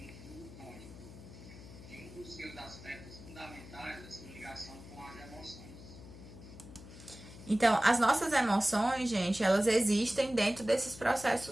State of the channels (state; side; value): noise; left; hum, 16 dB below the sound